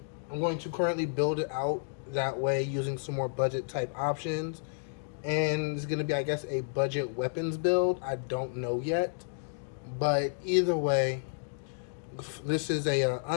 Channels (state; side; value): silent; right; digital silence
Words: currently build it out that way using some more budget type options, and it's going to be, I guess, a budget weapons build. I don't know yet, but either way, this is a